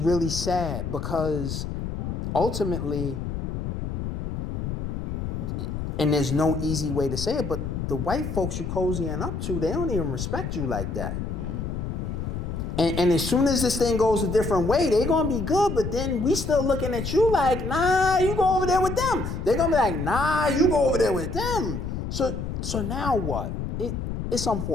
sad because ultimately, and there's no easy way to say it, but the white folks you cozying up to, they don't even respect you like that. And as soon as this thing goes a different way, they're gonna be good, but then we still looking at you like, nah, you go over there with them. They're gonna be like, nah, you go over there with them. So now what? It's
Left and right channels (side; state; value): left; noise; rumble, 4 dB below the sound